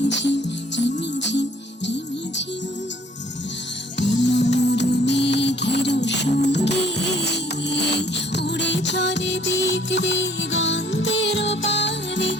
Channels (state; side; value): normal; both; correlation 0.59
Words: রিমিঝিম রিমিঝিম মোর মেঘের সঙ্গে উড়ে চলে দিক দিগন্তের পানে,